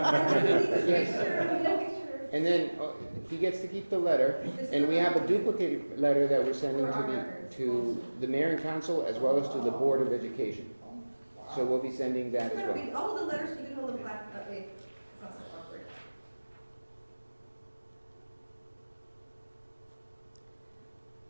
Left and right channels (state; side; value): inverted; both; correlation -1.00